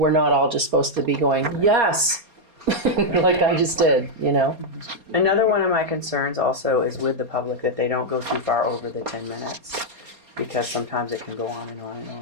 not all just supposed to be going, yes, like I just did, Another one of my concerns also is with the public, that they don't go too far over the 10 minutes, because sometimes it can go on and on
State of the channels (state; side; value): late; left; 4.3 ms